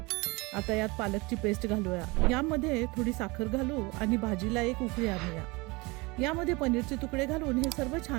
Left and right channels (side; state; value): left; quieter; 25.2 dB